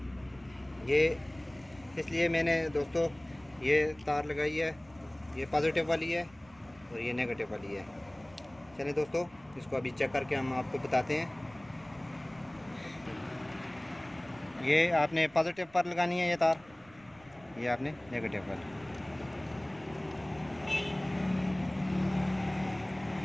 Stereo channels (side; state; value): right; noise; rumble, 26 dB below the sound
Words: ये इसलिए मैंने दोस्तों ये तार लगाई है। ये पॉजिटिव वाली है और ये नेगेटिव वाली है। चलिए दोस्तों, इसको अभी चेक करके हम आपको बताते हैं। ये आपने पॉजिटिव पर लगानी है ये तार, ये आपने नेगेटिव पर।